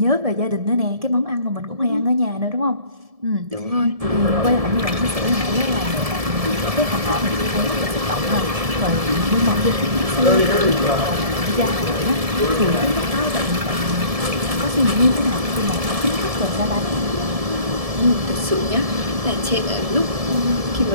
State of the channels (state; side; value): late; left; 1.7 ms